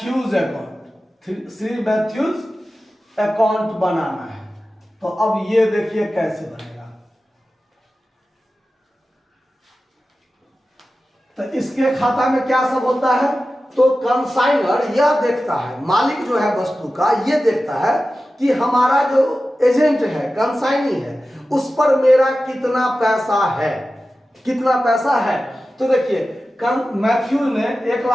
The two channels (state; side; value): normal; both; correlation 0.94